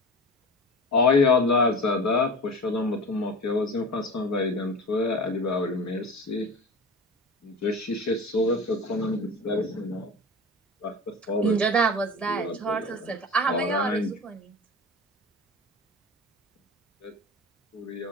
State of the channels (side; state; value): both; normal; correlation 0.32